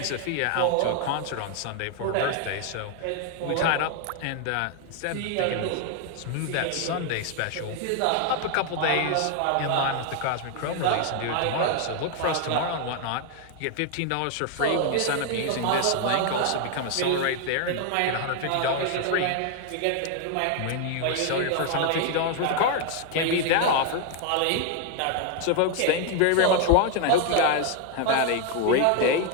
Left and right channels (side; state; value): both; different; correlation 0.00